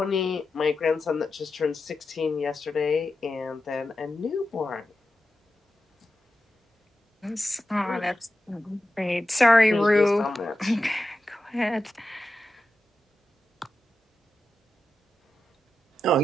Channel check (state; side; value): normal; both; correlation 0.91